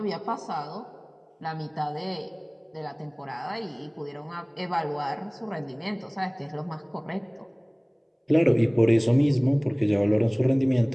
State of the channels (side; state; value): both; identical; correlation 1.00